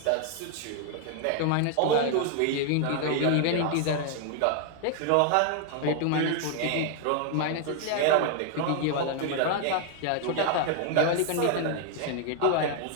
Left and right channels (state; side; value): different; both; correlation 0.00